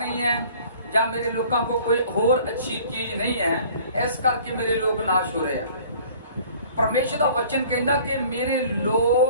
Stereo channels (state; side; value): inverted; both; correlation -0.50